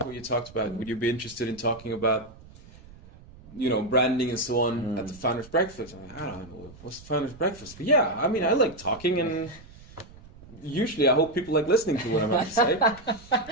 what you talked about. Would you be interested in talking about, branding and so on at the Founders Breakfast?" I'm like, I don't know, what's the Founders Breakfast? But yeah, I mean, I like talking, and usually I hope people like listening to what I'm about to say.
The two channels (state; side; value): noise; right; rumble, 21 dB below the sound